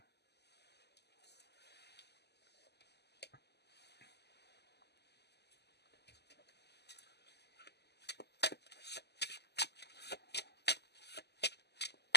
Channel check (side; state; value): right; late; 0.49 ms